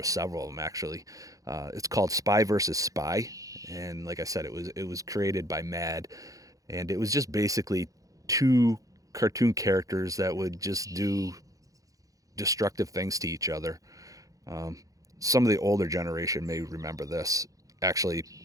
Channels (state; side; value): late; left; 0.17 ms